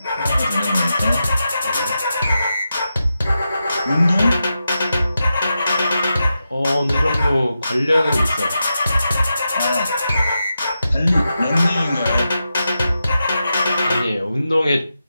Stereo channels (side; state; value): both; inverted; correlation -0.89